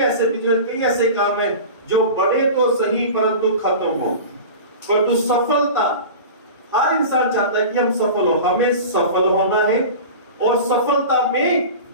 बिजनेस, कई ऐसे काम हैं जो बड़े तो सही परंतु खत्म हो। परंतु सफलता, हर इंसान चाहता है कि हम सफल हो, हमें सफल होना है और सफलता में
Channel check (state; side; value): inverted; both; correlation -0.33